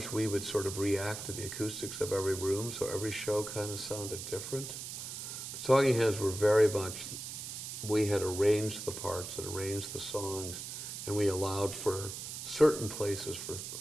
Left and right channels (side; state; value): right; noise; hiss, 7 dB below the sound